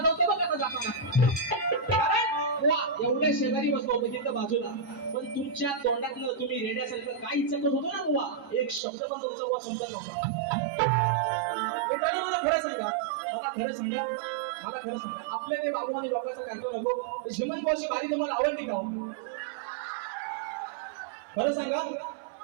बघ आता जाताना. कारण वा एवढ्या शेजारी बसलो होतो तिथं बाजूला, पण तुमच्या तोंडातलं तुम्ही रेड्यासारखं काय इच्छा होतो ना बुवा, एक शब्द पण तुमचा बुवा समजत नव्हता. मित्रांनो मला खरं सांगा, आपल्या ते बाबू आणि लोकांचं करतो नको. झिमन भाऊची बारी तुम्हाला आवडली का? खरं सांगा,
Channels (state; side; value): drops out; left; at 8.8 s